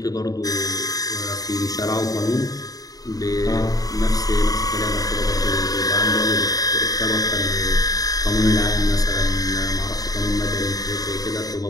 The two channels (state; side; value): late; right; 0.18 ms